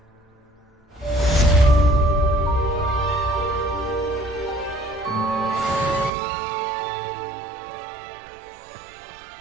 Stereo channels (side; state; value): left; drops out; at 6.1 s